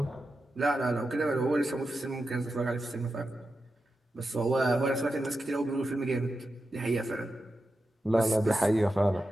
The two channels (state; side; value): normal; both; correlation 0.90